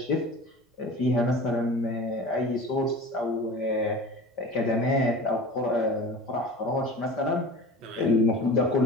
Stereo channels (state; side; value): normal; both; correlation 0.37